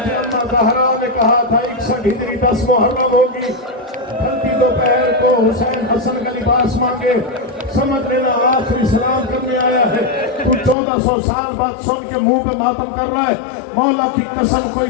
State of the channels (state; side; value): drops out; right; at 10.8 s